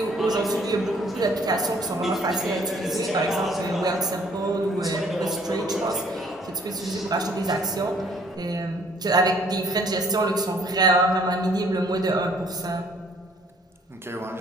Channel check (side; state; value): both; normal; correlation 0.60